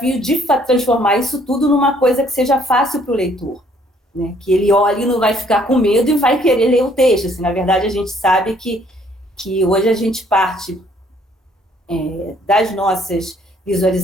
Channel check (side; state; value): both; normal; correlation 0.63